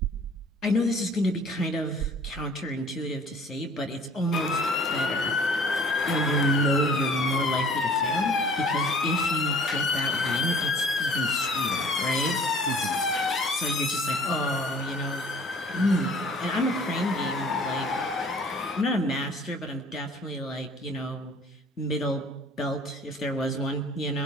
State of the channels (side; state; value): both; normal; correlation 0.51